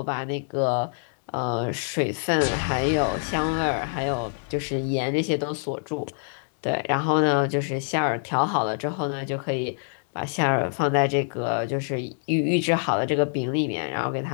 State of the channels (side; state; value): right; silent; 61 dB below the other